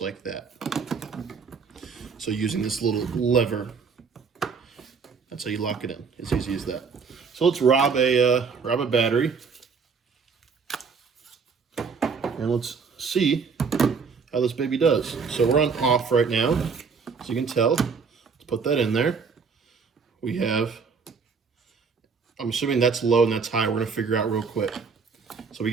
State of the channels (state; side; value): quieter; left; 5.4 dB